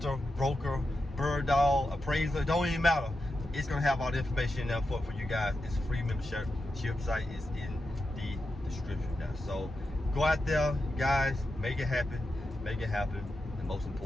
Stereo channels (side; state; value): both; normal; correlation 0.89